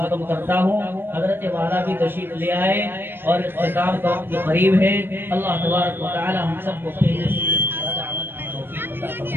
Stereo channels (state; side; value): late; left; 0.10 ms